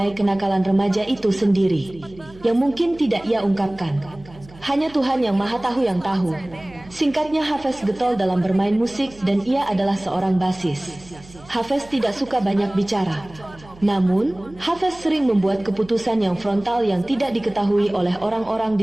kenakalan remaja itu sendiri, yang mungkin tidak ia ungkapkan. Hanya Tuhan yang Maha Tahu yang tahu. Singkatnya, Hafiz getol dalam bermain musik dan ia adalah seorang basis. Hafiz tidak suka banyak bicara. Namun, Hafiz sering membuat keputusan yang frontal yang tidak diketahui oleh orang-orang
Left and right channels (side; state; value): right; noise; hum, 21 dB below the sound